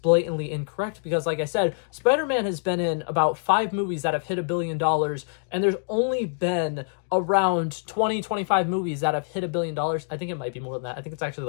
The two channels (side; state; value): right; silent; digital silence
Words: blatantly incorrect, because like I said, Spider-Man has been in about 5 movies that have hit $1 billion, and there's only been around 25 movies that have hit $1 billion. I think it might be more than that. I think it's actually